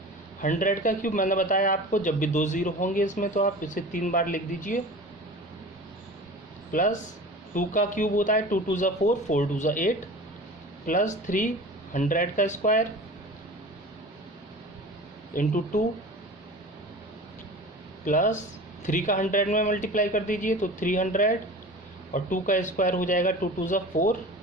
100 का क्यूब मैंने बताया आपको, जब भी 2 0 होंगे इसमें तो आप इसे 3 बार लिख दीजिए, प्लस 2 का क्यूब होता है 2 2 ज़ा 4 4 2 ज़ा 8 प्लस 300 का स्क्वायर इंटू 2 प्लस 3 का 100 में मल्टीप्लाई कर दीजिए तो 300 और 2 का स्क्वायर हो जाएगा 2 2 ज़ा 4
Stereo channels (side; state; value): both; normal; correlation 0.37